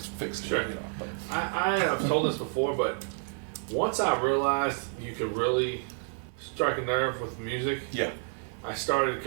fixed it, Sure. you know. But I have told this before, but once I realized you could really strike a nerve with music, yeah. I started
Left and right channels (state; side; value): silent; left; 58 dB below the other